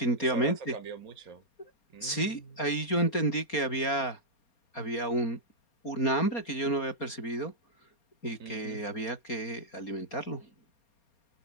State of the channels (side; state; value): right; late; 4.3 ms